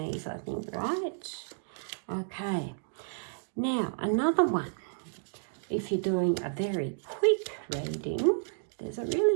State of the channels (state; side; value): silent; left; digital silence